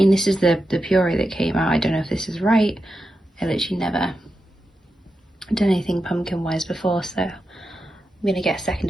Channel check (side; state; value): both; normal; correlation 0.89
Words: this is the puree that came out. I don't know if this is right. I literally never done anything pumpkin-wise before, so I'm gonna get a second